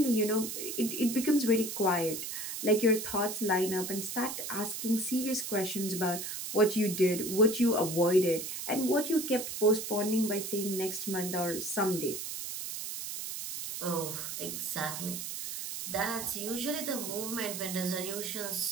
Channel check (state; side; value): noise; right; hiss, 6 dB below the sound